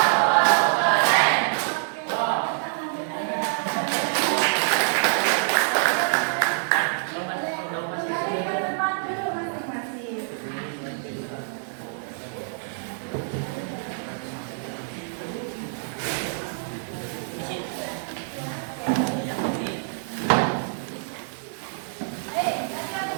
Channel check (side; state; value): left; silent; digital silence